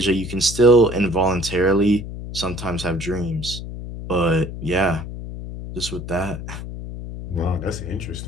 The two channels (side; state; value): left; noise; hum, 9 dB below the sound